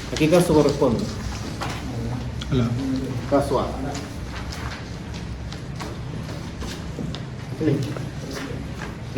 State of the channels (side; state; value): both; identical; correlation 1.00